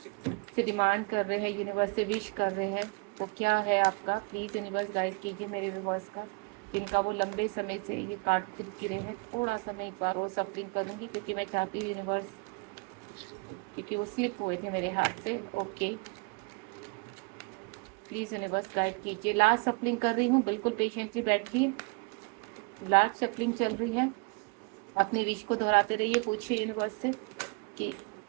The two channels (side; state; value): left; quieter; 30.3 dB